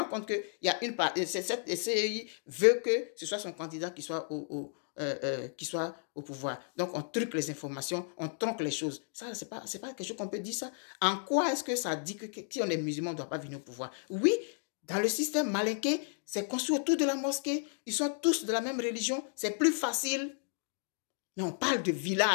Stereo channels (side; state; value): right; silent; 56 dB below the other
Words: compte qu'il y a une part, cette CEI veut que ce soit son candidat qui soit au pouvoir. Donc, on truque les informations, on tronque les choses. Ça, c'est pas quelque chose qu'on peut dire ça. En quoi est-ce que ça dit que si on est musulman, on ne doit pas venir au pouvoir? Oui, dans le système malinqué, c'est construit autour de la mosquée. Ils sont tous de la même religion. C'est plus facile. Mais on parle de